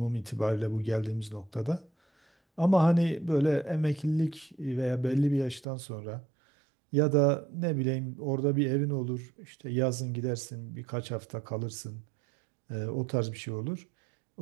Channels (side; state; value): left; drops out; at 5.7 s